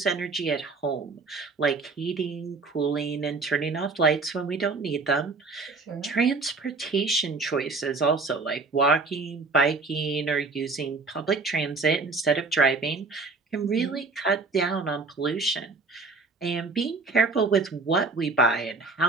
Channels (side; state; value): left; quieter; 3.9 dB